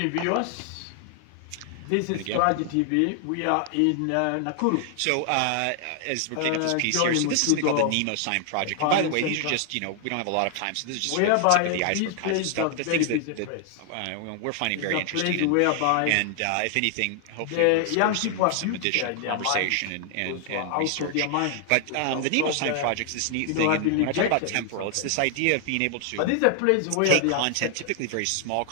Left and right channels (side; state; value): both; different; correlation 0.00